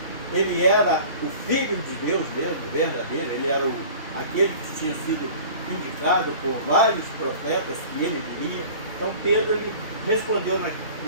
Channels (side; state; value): both; inverted; correlation -0.43